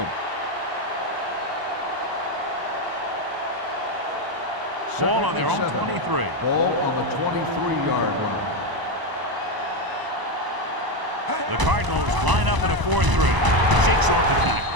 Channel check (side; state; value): left; late; 1.0 ms